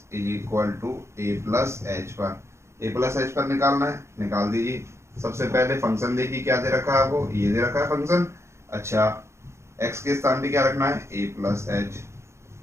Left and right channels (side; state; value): left; late; 0.13 ms